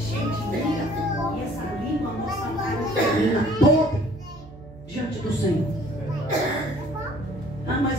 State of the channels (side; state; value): right; noise; hum, 18 dB below the sound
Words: de ira, e essa língua, nossa carne feminina toda diante do Senhor. Ah, mas